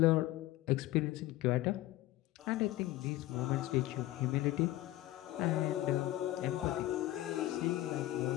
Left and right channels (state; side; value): quieter; right; 16.1 dB